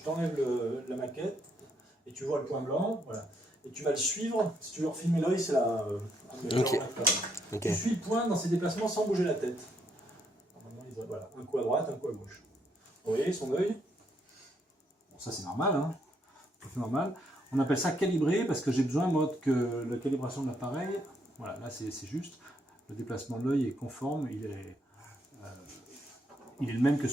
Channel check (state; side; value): normal; both; correlation 0.74